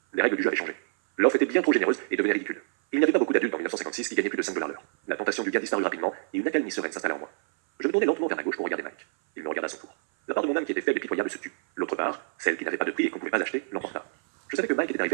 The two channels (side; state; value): left; silent; 60 dB below the other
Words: Les règles du jeu avaient changé. L'offre était bien trop généreuse et devenait ridicule. Il n'y avait pas beaucoup d'adultes en 1956 qui gagnaient plus de $5 l'heure. La tentation du gain disparut rapidement et une accalmie sereine s'installa en moi. Je me tournai lentement vers la gauche pour regarder Mike. Il me regarda à son tour. La part de mon âme qui était faible et pitoyable se tut. L'autre part, celle qui n'avait pas de prix et qu'on ne pouvait pas acheter, l'emporta. Je savais que Mike était